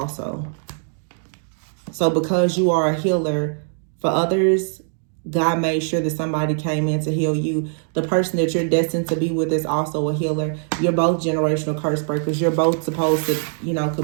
So because you are a healer for others, God made sure that somebody came in to heal you. The person that you're destined to be with is also a healer. You're both generational curse breakers. You're both supposed to, you know,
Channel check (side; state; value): left; silent; 61 dB below the other